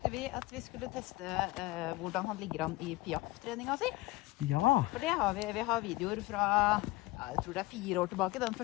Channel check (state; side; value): quieter; right; 19.2 dB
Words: vi at vi skulle teste hvordan han ligger an i Piaf-treninga si. Ja. For det har vi har videoer fra, jeg tror det er 4 år tilbake, den